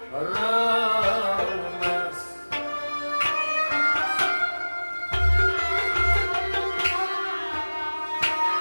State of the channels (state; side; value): inverted; both; correlation -1.00